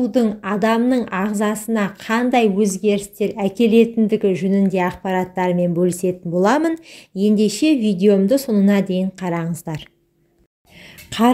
адамның ағзасына қандай өзгерістер әкелетіндігі жөнінде ақпараттармен бөлісетін боламын. Ендеше видеомды соңына дейін қараңыздар.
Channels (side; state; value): both; identical; correlation 1.00